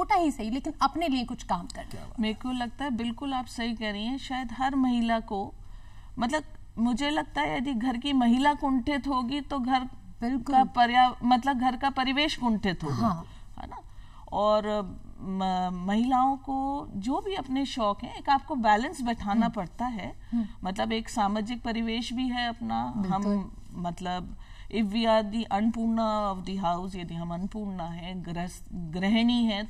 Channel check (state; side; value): identical; both; correlation 1.00